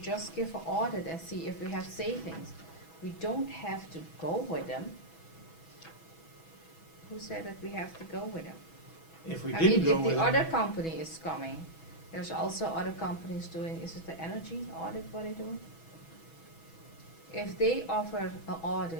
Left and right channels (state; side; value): late; right; 6.1 ms